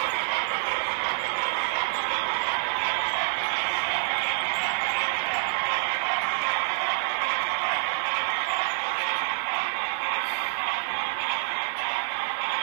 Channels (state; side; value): silent; left; digital silence